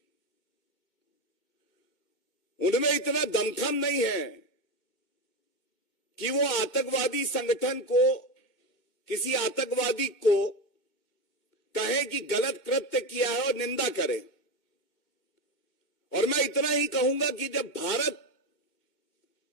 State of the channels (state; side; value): late; right; 2.2 ms